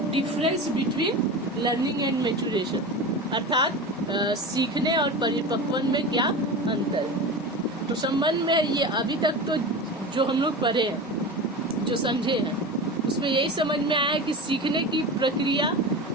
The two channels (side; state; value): both; normal; correlation 0.28